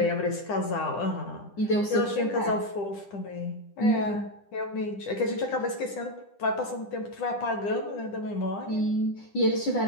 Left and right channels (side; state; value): right; late; 10 ms